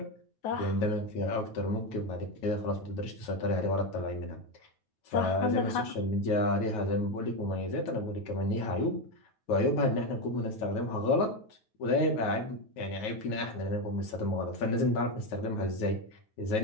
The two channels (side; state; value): right; late; 9.3 ms